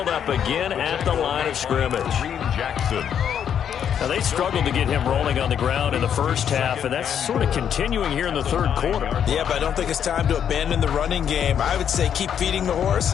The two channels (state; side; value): quieter; right; 8.6 dB